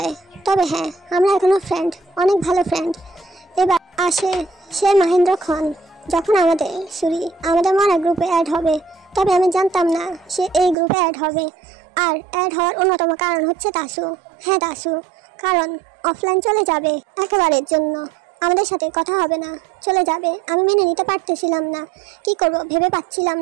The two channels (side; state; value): left; drops out; at 10.8 s